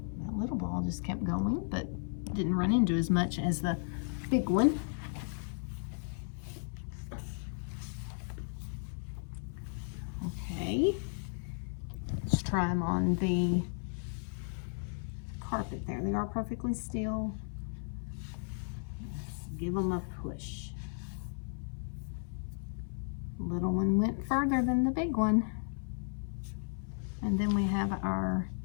That little ball just kept going, but didn't run into as much as the big one. Okay, let's try them on the carpet there. They are perfectly still. Let's give them a push. The little one went further than the big one. And then we have our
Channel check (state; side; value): silent; right; 55 dB below the other